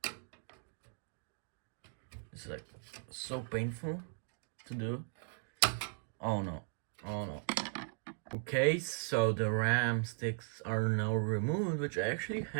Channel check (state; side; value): silent; left; digital silence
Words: this is like so painful to do. Oh no, oh no. Okay, so the RAM sticks are now removed, which actually